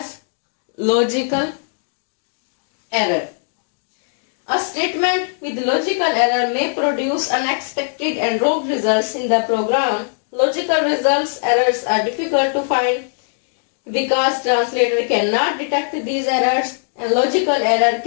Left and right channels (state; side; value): silent; right; digital silence